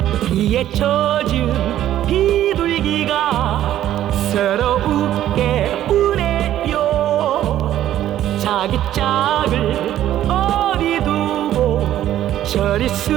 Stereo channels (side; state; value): left; quieter; 12.3 dB